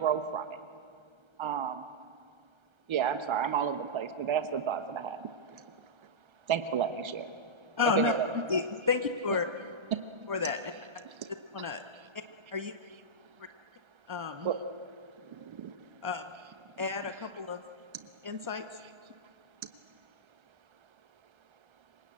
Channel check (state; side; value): late; left; 1.3 ms